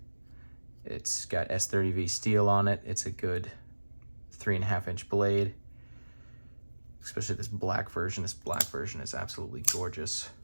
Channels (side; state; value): both; inverted; correlation -1.00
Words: It's got S30V steel on it. It's a good 3.5-inch blade, especially this black version. This black version is absolutely gorgeous.